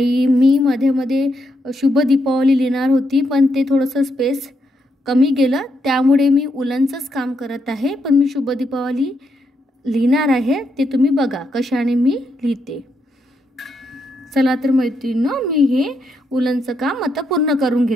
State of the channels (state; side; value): normal; both; correlation 0.80